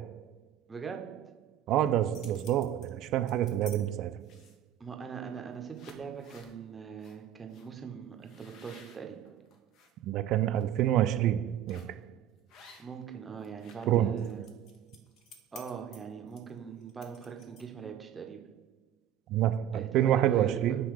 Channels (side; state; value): left; quieter; 10.9 dB